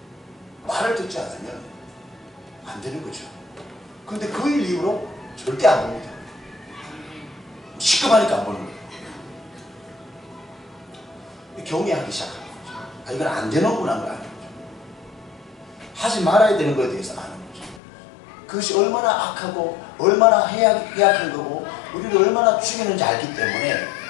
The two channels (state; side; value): drops out; right; at 17.8 s